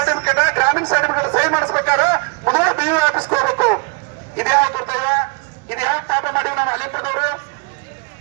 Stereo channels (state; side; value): quieter; left; 31.8 dB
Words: ಗ್ರಾಮೀಣ ಸರ್ಟಿಫಿಕೇಟ್ ಸಹಿ ಮಾಡಿಸ್ಬೇಕಾದ್ರೆ ಮೊದಲು BU ಆಫೀಸ್ಗೆ ಹೋಗ್ಬೇಕು. ಇದ್ಯಾವ ದುರ್ದೈವ, ಇದ್ಯಾವ ಪಾಪ ಮಾಡಿವಿ ನಮ್ಮ ಅಲಿಂಪುರದವರು.